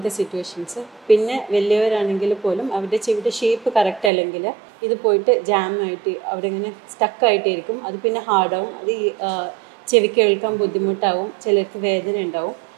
സിറ്റുവേഷൻസ്. പിന്നെ വലിയവരാണെങ്കിൽ പോലും അവരുടെ ചെവിയുടെ ഷേപ്പ് കറക്റ്റ് അല്ലെങ്കിൽ ഇത് പോയിട്ട് ജാമായിട്ട് അവിടെ ഇങ്ങനെ സ്റ്റക്കായിട്ടിരിക്കും. അത് പിന്നെ ഹാർഡാവും, അത് ചെവി കേൾക്കാൻ ബുദ്ധിമുട്ടാവും, ചിലർക്ക് വേദന ഉണ്ടാവും.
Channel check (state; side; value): drops out; left; at 4.1 s